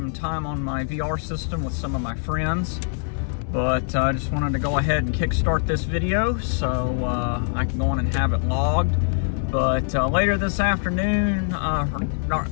time on my VR system with some of my friends. But I just wanted to go ahead and kickstart this video so I can go on and have it logged. But later this afternoon, not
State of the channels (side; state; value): right; silent; digital silence